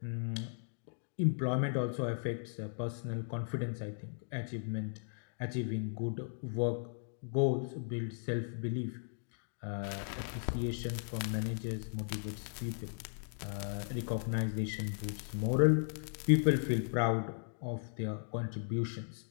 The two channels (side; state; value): right; silent; digital silence